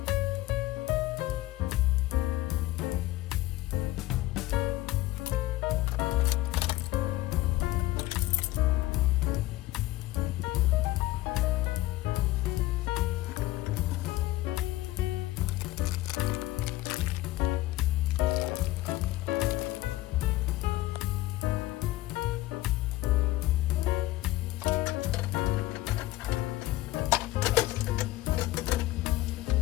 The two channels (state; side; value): quieter; right; 16.9 dB